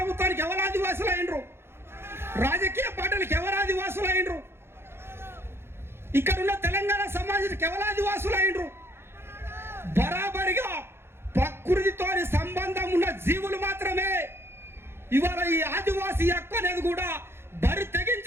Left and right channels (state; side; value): late; left; 0.12 ms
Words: ఎవరు ఆదివాసులు అయినరు? రాజకీయ పార్టీలకు ఎవరు ఆదివాసులు అయినరు? ఇక్కడున్న తెలంగాణ సమాజానికి ఎవరు ఆదివాసులు అయినరు? బరాబరిగా ప్రకృతితో సంబంధం ఉన్న జీవులు మాత్రమే. ఇవాళ ఈ ఆదివాసీ హక్కు అనేది కూడా బరి